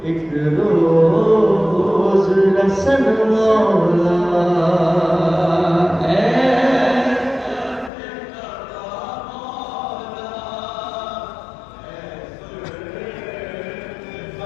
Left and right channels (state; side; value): drops out; right; at 7.9 s